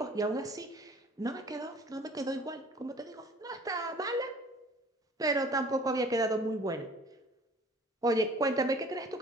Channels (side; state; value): both; normal; correlation 0.50